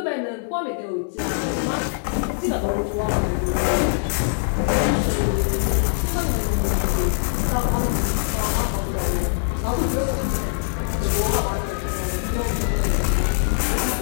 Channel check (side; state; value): right; silent; digital silence